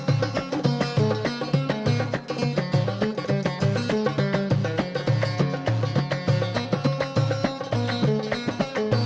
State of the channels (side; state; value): both; identical; correlation 1.00